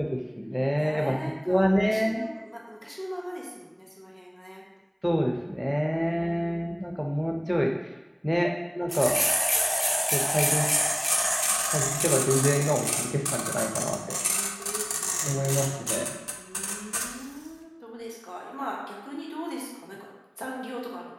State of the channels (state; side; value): identical; both; correlation 1.00